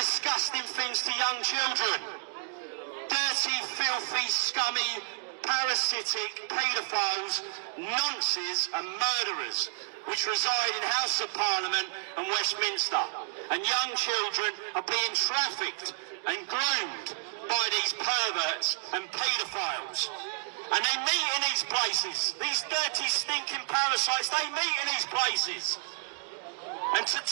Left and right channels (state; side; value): silent; left; digital silence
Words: things to young children. Dirty, filthy, scummy, parasitic paedophiles, nonces and murderers, which reside in House of Parliament and Westminster. And young children are being trafficked and groomed by these perverts and paedophiles. And they meet in these places. These dirty, stinking parasites, they meet in these places. And to